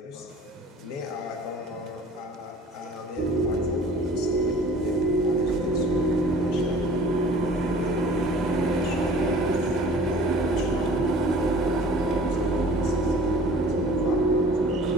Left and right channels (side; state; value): both; normal; correlation 0.47